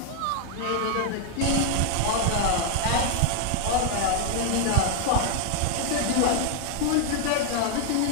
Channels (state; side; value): different; both; correlation 0.00